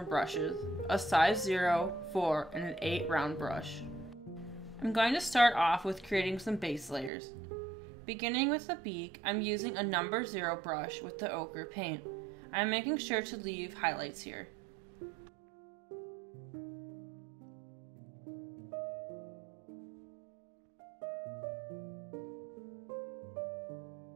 brushes, a size 0, 4, and an 8 round brush. I'm going to start off with creating some base layers. Beginning with the beak, I'm using a number 0 brush with the ochre paint. I'm making sure to leave highlights here.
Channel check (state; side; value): drops out; left; at 7.1 s